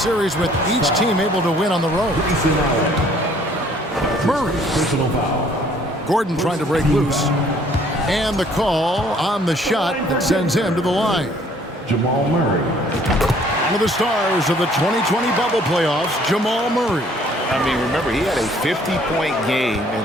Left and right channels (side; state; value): both; normal; correlation 0.59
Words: with each team able to win on the road. Murray. Gordon trying to break loose. And the call on the shot that sends him to the line. Jamal Murray. One of the stars of the 2020 bubble playoffs, Jamal Murray. I mean, remember, he had a 50-point game, and